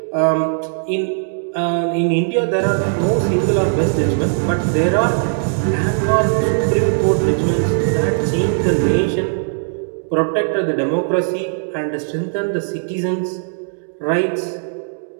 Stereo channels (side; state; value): left; silent; digital silence